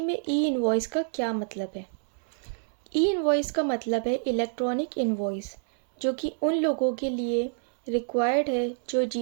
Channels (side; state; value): left; silent; 60 dB below the other